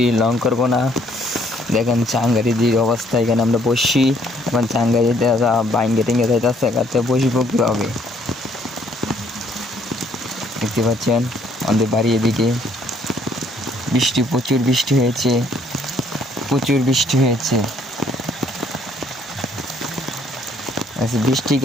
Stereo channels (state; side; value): normal; both; correlation 0.64